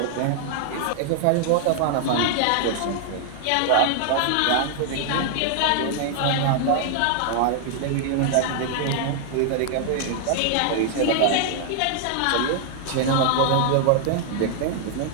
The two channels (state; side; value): different; both; correlation 0.00